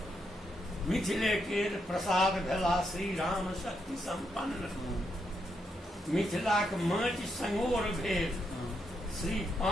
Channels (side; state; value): both; normal; correlation 0.80